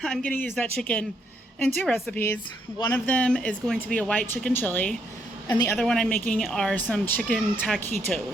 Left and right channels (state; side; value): normal; both; correlation 0.74